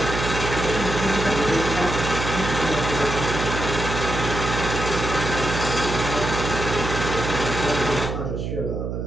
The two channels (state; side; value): noise; right; hum, 4 dB below the sound